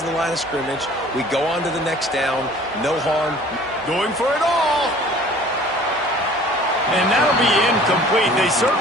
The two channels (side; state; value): both; normal; correlation 0.49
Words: the line of scrimmage. We go on to the next down. No harm. Going for it all. And that'll be incomplete. They